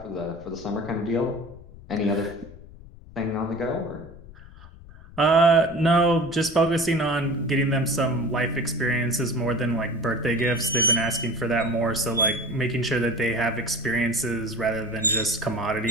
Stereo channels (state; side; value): noise; left; rumble, 19 dB below the sound